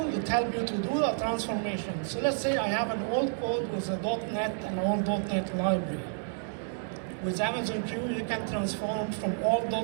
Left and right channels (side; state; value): left; silent; digital silence